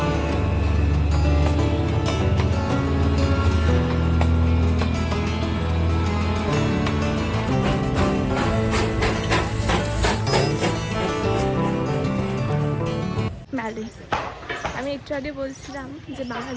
আমি একটু আগে বলছিলাম যে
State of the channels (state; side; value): identical; both; correlation 1.00